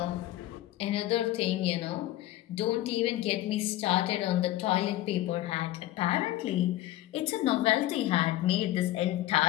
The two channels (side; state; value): right; quieter; 15.2 dB